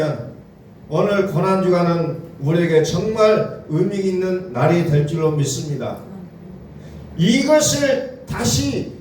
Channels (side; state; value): both; identical; correlation 1.00